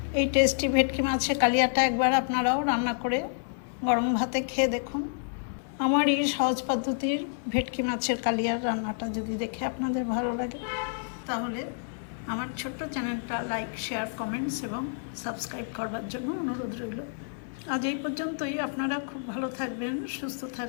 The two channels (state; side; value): silent; right; digital silence